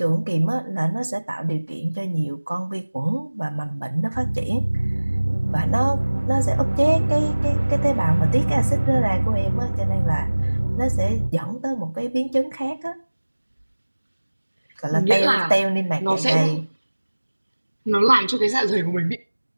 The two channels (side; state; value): both; inverted; correlation -1.00